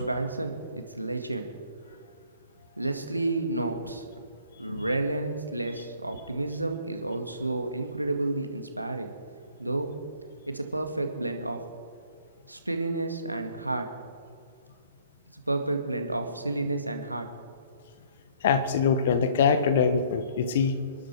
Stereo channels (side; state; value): both; inverted; correlation -0.60